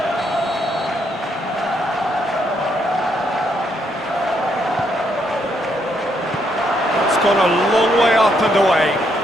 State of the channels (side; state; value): both; normal; correlation 0.74